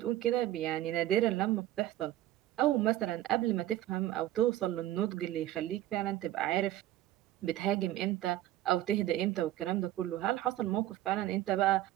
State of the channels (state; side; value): quieter; left; 14.1 dB